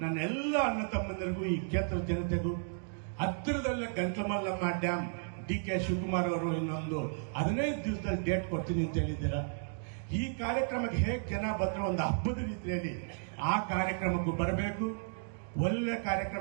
ನನ್ನ ಎಲ್ಲ ಅಣ್ಣ ತಮ್ಮಂದಿರಿಗೂ, ಈ ಕ್ಷೇತ್ರದ ಜನತೆಗೂ, ಹತ್ತಿರದಲ್ಲೇ ಗಂಟ್ಲಮಲ್ಲಮ್ಮ ಡ್ಯಾಮ್ ಡಿ.ಕೆ. ಶಿವಕುಮಾರ್ ಅವರು ಇನ್ನೊಂದು 15 ದಿವಸದಲ್ಲಿ ಡೇಟ್ ಕೊಡ್ತೀನಿ ಅಂತ ಹೇಳಿದ್ದೀರಾ. ಈ ಕಾರ್ಯಕ್ರಮಕ್ಕೆ ಹೇಗೆ ಜನ ಬಂದ್ರು ಒಂದು ಹಬ್ಬದ ರೀತಿಯಲ್ಲಿ ಆ ಕಾರ್ಯಕ್ರಮಕ್ಕೂ ಬರಬೇಕು. ಒಳ್ಳೆ ಕಾರ್ಯಕ್ರಮ,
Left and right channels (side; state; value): left; silent; digital silence